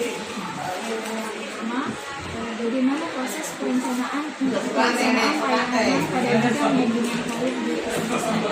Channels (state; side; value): identical; both; correlation 1.00